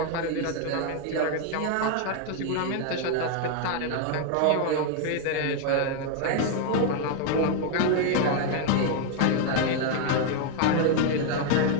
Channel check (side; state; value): both; different; correlation 0.01